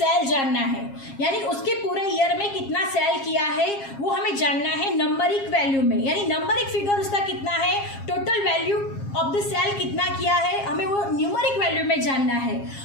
जानना है, यानी उसके पूरे ईयर में कितना सेल किया है वो हमें जानना है नंबरिक वैल्यू में, यानी नंबरिक फिगर उसका कितना है, total value of the sale कितना किया है, हमें वो न्यूमरिक वैल्यू में जानना है.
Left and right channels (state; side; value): late; right; 7.4 ms